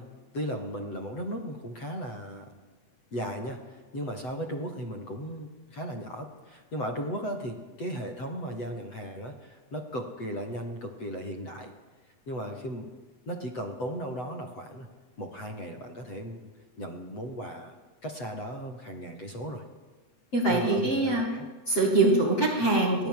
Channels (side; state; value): right; late; 7.8 ms